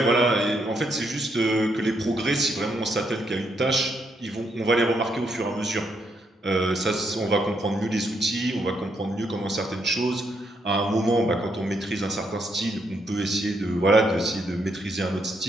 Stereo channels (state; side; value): normal; both; correlation 0.77